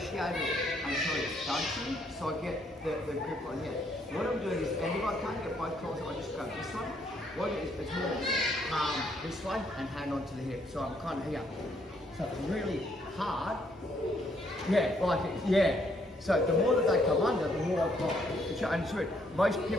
it until it's done to you. So I get the grip on here. What I'm doing is, and if I can't get both claws, I just grab this one. What it is, it's more palm this way and hand onto the hip. So I'm kind of here. So it's really hard. Yeah. So the more that they come under, the more I've got. And it's weird. Most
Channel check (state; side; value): normal; both; correlation 0.70